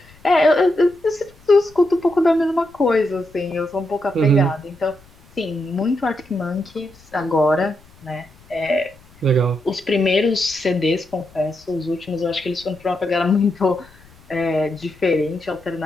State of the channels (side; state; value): left; noise; rumble, 27 dB below the sound